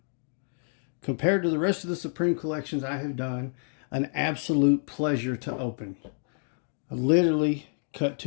compared to the rest of the Supreme collections I have done, an absolute pleasure to open. I literally cut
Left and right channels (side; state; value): right; silent; 59 dB below the other